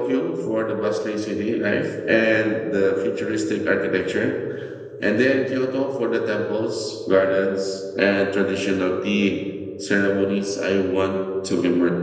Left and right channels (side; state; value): both; identical; correlation 1.00